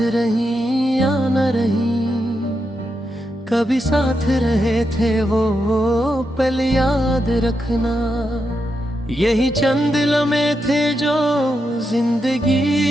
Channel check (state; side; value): normal; both; correlation 0.85